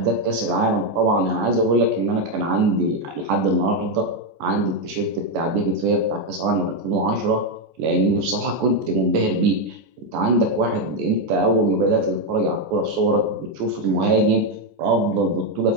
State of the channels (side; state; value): left; late; 14 ms